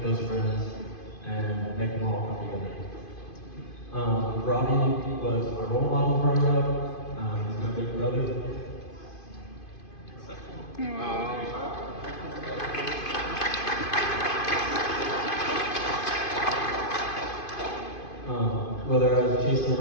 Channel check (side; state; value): right; late; 2.5 ms